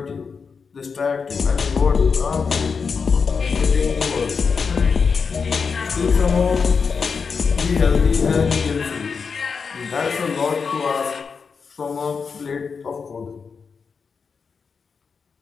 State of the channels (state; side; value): quieter; right; 5.5 dB